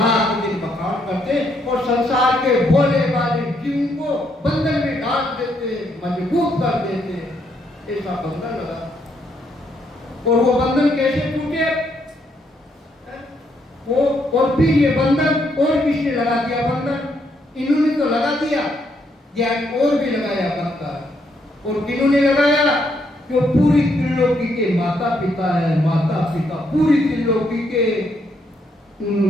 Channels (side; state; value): both; normal; correlation 0.74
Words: दिन बखान करते, और संसार के भोले वाले जीव को बंधन में डाल देते, मजबूत कर देते, ऐसा बंधन लगा। और वो बंधन कैसे टूटे? वो और फिर ये बंधन और किसने लगा दिया? बंधन इन्होंने तो लगा दिया, ज्ञान और भी लगाया बंधन। और किन्होंने लगाया? जो पूरी त्रिलोकी के माता पिता है, माता पिता पूरी त्रिलोकी के,